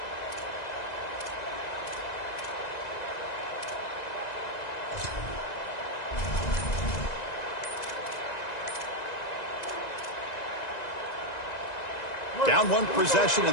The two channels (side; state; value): right; late; 1.9 ms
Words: Down 1 possession in